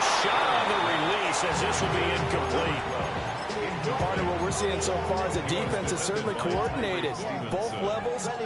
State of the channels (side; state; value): both; identical; correlation 1.00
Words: shot on the release as this will be incomplete. Part of what we're seeing so far is the defense is certainly coordinated. Both levels